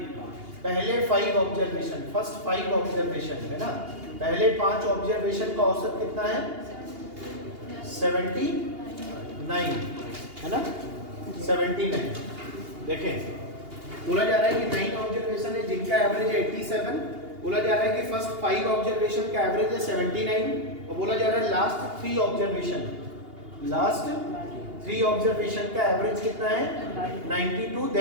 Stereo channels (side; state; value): left; late; 2.8 ms